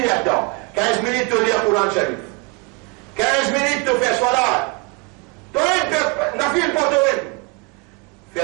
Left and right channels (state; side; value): quieter; left; 28.8 dB